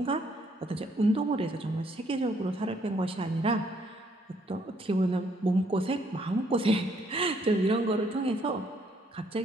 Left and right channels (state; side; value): normal; both; correlation 0.68